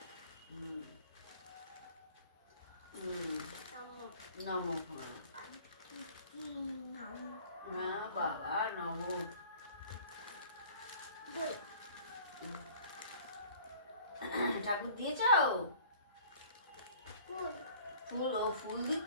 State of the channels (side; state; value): both; inverted; correlation -0.51